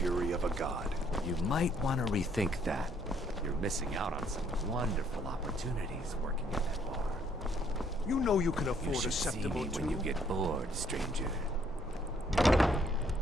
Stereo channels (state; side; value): normal; both; correlation 0.67